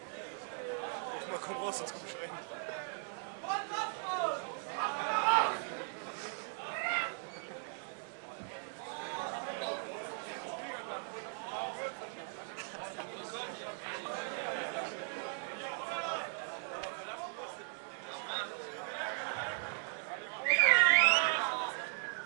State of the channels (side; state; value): left; silent; 52 dB below the other